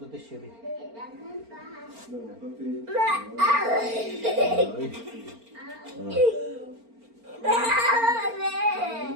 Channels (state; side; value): late; left; 4.4 ms